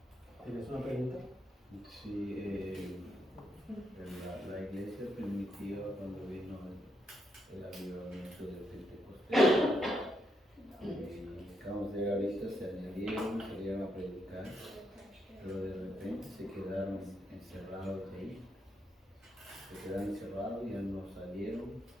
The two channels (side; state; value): both; normal; correlation 0.79